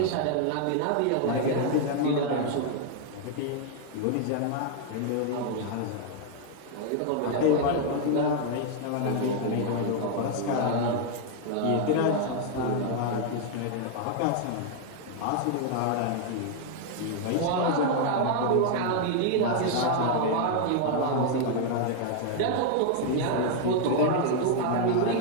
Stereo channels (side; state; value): both; different; correlation 0.00